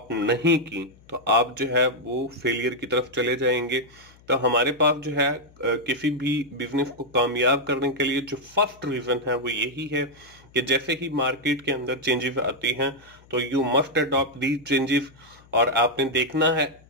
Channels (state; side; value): noise; left; hum, 26 dB below the sound